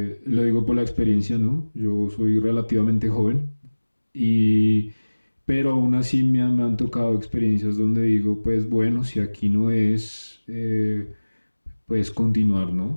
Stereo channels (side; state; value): both; inverted; correlation -1.00